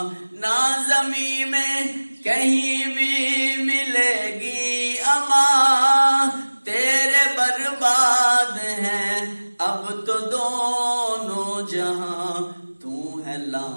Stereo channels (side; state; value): both; inverted; correlation -1.00